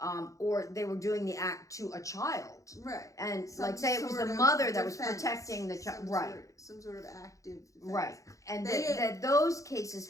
Or they were doing the act to a child. Right. And say it was the mother that was protecting the child. Right. Some sort of active defense. Right. And that those cases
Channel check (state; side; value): late; right; 0.16 ms